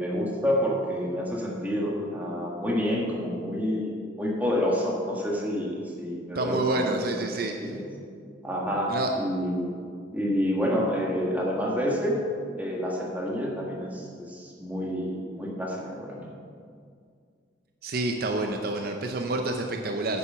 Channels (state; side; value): normal; both; correlation 0.49